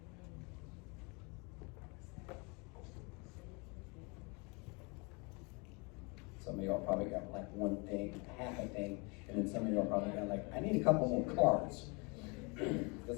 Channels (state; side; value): quieter; right; 30.3 dB